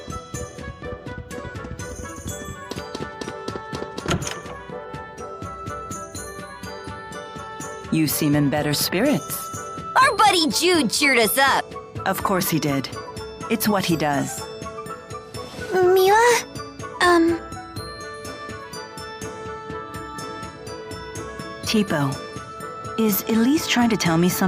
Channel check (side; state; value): both; identical; correlation 1.00